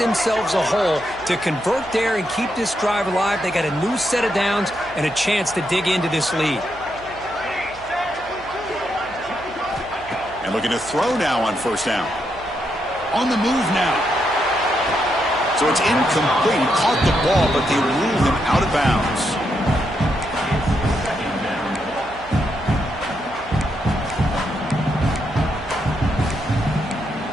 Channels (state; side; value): noise; right; hum, 21 dB below the sound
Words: a hole to convert there and keep this drive alive, they got a new set of downs and a chance to dig into this lead. And looking to throw now on first down. On the move now. So it's incomplete. He caught the ball, but they ruled him out of bounds.